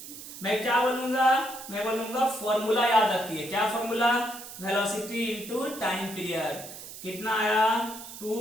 मैं क्या बोलूंगा? मैं बोलूंगा फॉर्मूला याद रखिए। क्या formula? Velocity into time period. कितना आया?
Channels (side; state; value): right; noise; hiss, 13 dB below the sound